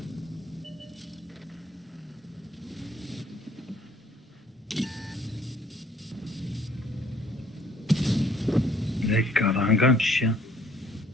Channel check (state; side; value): normal; both; correlation 0.61